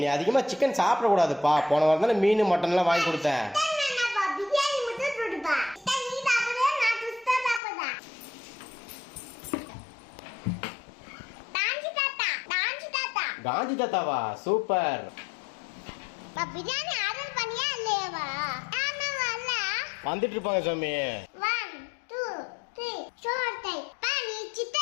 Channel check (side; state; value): right; drops out; at 7.6 s